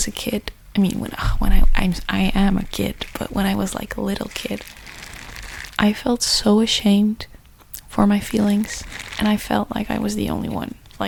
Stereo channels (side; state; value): both; identical; correlation 1.00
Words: a kid, I am a kid, but when I was like a little kid, I felt so ashamed for my feelings, and I felt like I was the only one.